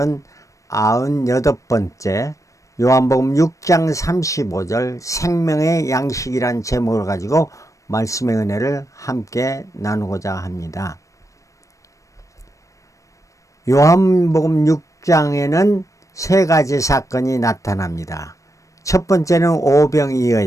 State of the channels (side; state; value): right; late; 0.16 ms